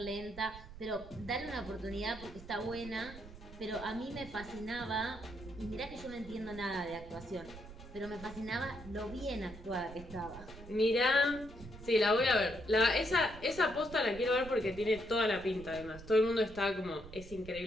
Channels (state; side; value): noise; right; rumble, 15 dB below the sound